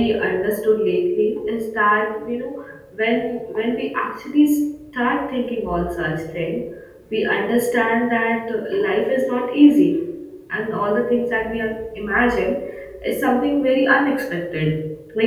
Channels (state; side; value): identical; both; correlation 1.00